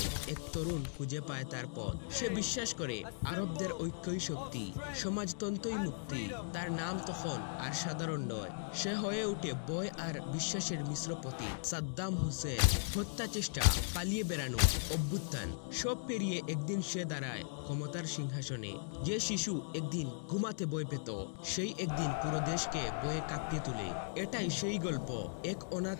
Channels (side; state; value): right; silent; digital silence